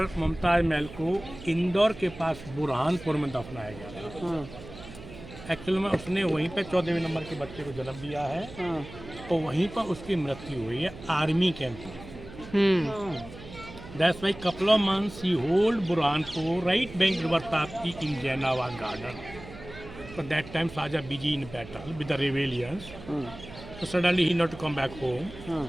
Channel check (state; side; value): noise; right; hum, 16 dB below the sound